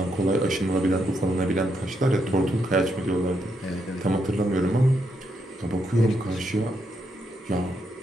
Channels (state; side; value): normal; both; correlation 0.79